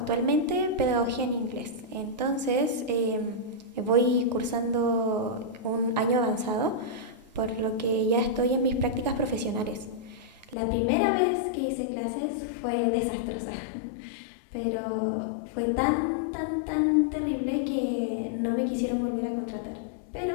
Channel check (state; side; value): drops out; right; at 10.6 s